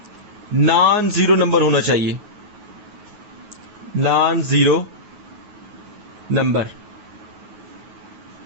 नॉन जीरो नंबर होना चाहिए, नॉन जीरो नंबर।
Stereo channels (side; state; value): left; late; 9.4 ms